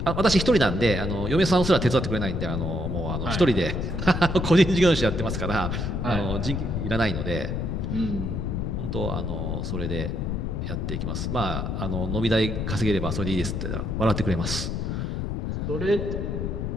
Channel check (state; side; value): noise; left; rumble, 2 dB below the sound